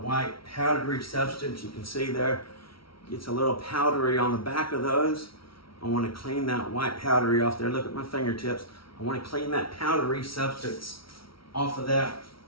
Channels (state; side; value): late; right; 0.75 ms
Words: white powdery substance. You can see there, it's a little powdery on the back of those. I want to clean that white powdery off there. Look at my fingertips. I want to clean that powdery substance off of that